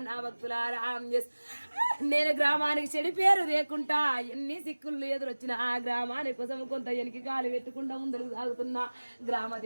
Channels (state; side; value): inverted; both; correlation -1.00